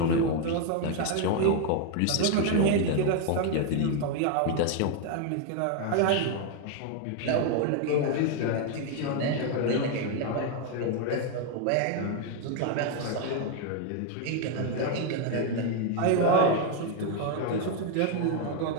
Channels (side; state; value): both; different; correlation 0.01